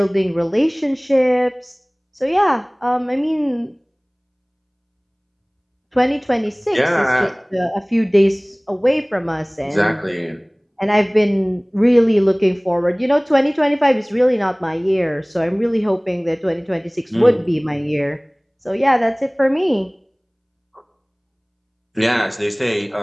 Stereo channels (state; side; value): identical; both; correlation 1.00